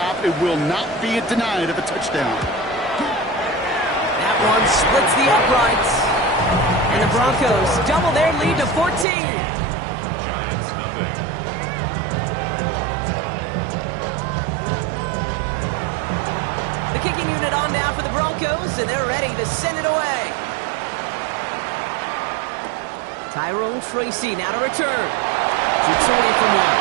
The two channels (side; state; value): left; drops out; at 9.1 s